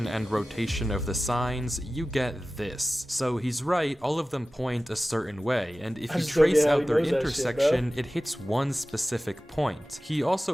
and rotation of the signs, you get this. So he's right, all of them point a certain way, and if I you just don't trace get how out he their knows that shit, intersection, it hits one specific point. He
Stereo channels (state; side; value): normal; both; correlation 0.96